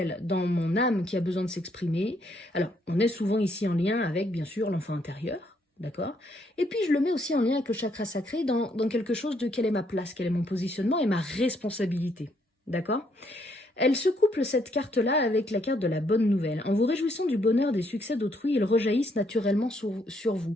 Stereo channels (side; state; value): both; normal; correlation 0.71